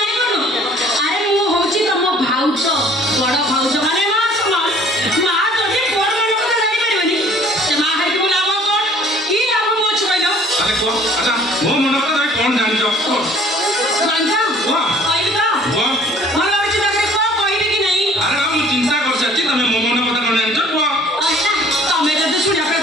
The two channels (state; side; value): normal; both; correlation 0.54